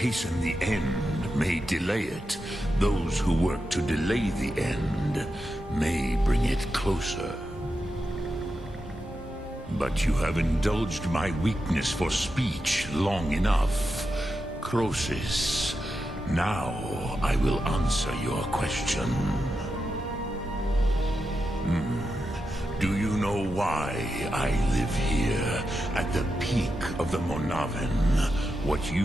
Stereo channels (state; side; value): normal; both; correlation 0.88